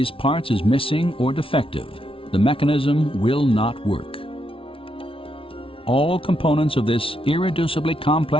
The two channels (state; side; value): late; right; 0.26 ms